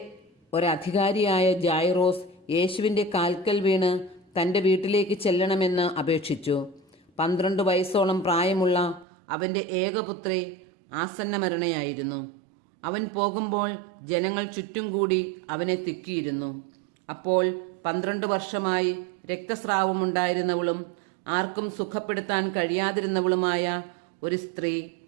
ഒരധികാരിയായ ജായ്റോസ് യേശുവിൻ്റെ കാൽക്കൽ വീണ് തൻ്റെ വീട്ടിലേക്ക് ചെല്ലണമെന്ന് അപേക്ഷിച്ചു. 12 വയസ്സോളം പ്രായമുള്ള അവൻ്റെ ഏകപുത്രി ആസന്നമരണയായിരുന്നു. അവൻ പോകുമ്പോൾ ജനങ്ങൾ ചുറ്റും കൂടി അവനെ തിക്കിയിരുന്നു. അപ്പോൾ 12 വർഷമായി രക്തസ്രാവമുണ്ടായിരുന്നവളും ആർക്കും സുഖപ്പെടുത്താൻ കഴിയാതിരുന്നവളുമായ ഒരു സ്ത്രീ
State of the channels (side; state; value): left; drops out; at 9.1 s